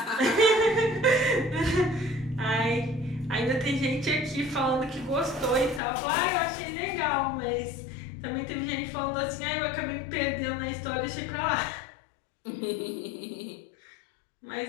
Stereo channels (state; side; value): drops out; right; at 5.8 s